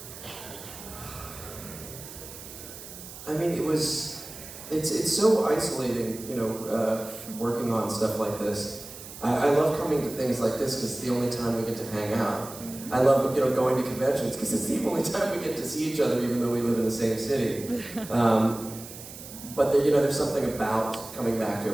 I mean, it's so isolating, working on stuff like this. I love coming to things like this because it's the only time we get to hang out. I love, going to conventions because it's the only time we get to see each other, even though we live in the same city. But there's something about coming back to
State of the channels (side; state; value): right; noise; hiss, 14 dB below the sound